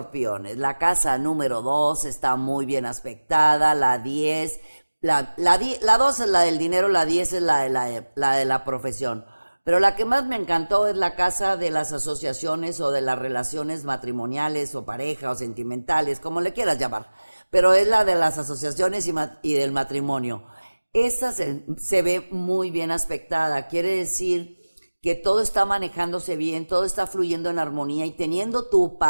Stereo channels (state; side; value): inverted; both; correlation -1.00